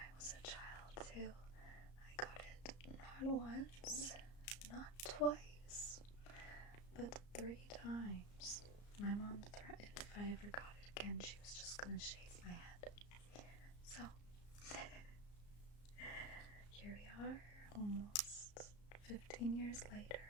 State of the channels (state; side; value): late; right; 34 ms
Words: was a child too. I got it not once, not twice, but 3 times. My mom threatened if I ever got it again, she was just gonna shave my head. So, here we are, almost 15 years later.